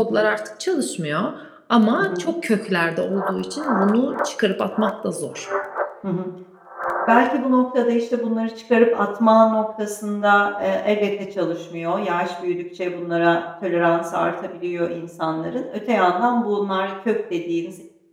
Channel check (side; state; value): both; identical; correlation 1.00